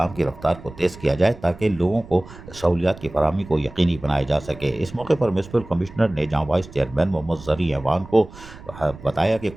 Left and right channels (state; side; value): noise; right; rumble, 18 dB below the sound